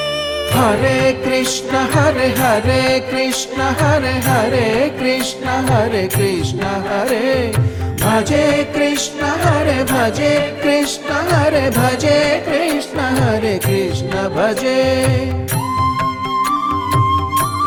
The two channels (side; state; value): both; identical; correlation 1.00